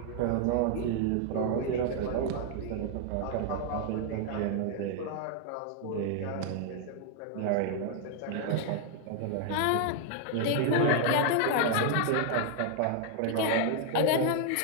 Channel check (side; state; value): both; different; correlation 0.00